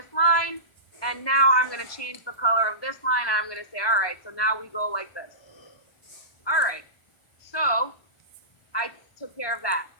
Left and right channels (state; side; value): late; right; 1.2 ms